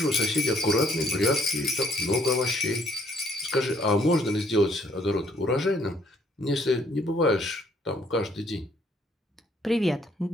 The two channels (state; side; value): normal; both; correlation 0.66